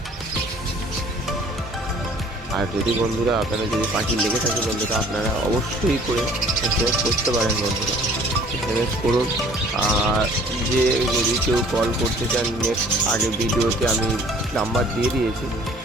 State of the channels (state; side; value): normal; both; correlation 0.53